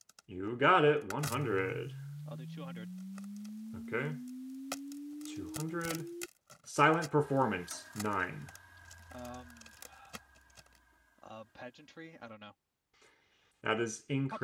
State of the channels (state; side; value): identical; both; correlation 1.00